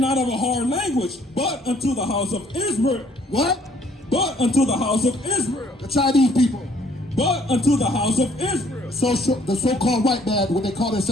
of a hard language, but unto the house of Israel. What? But unto the house of Israel. The Chinese people. But unto the house of Israel. The so-called white man, what they call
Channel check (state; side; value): normal; both; correlation 0.62